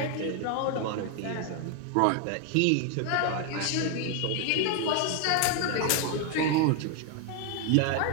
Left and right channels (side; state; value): both; different; correlation 0.01